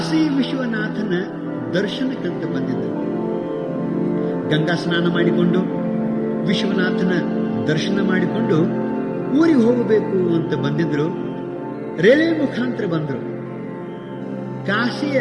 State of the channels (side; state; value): both; identical; correlation 1.00